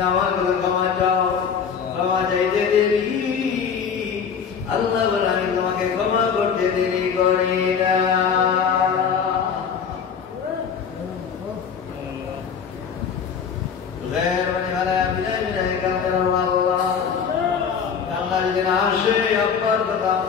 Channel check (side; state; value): right; quieter; 6.8 dB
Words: আমার কাছে ক্ষমা চাও, ক্ষমা চাইতে দেরি। আল্লাহ বলে আমি তোমাকে ক্ষমা করতে দেরি করি না। কান্নার দিন আসে আব্বার কথা,